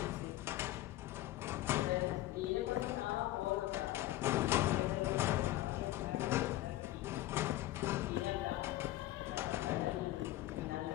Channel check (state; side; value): quieter; right; 15.8 dB